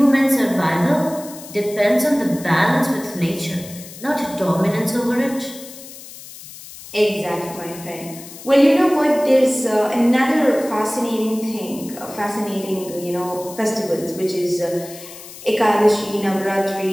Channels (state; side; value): noise; left; hiss, 16 dB below the sound